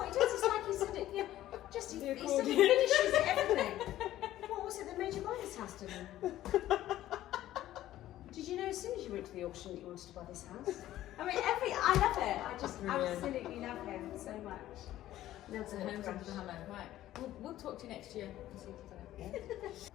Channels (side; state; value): right; quieter; 13.9 dB